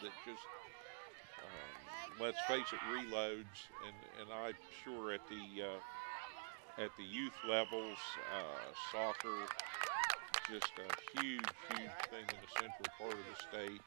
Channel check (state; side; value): silent; left; digital silence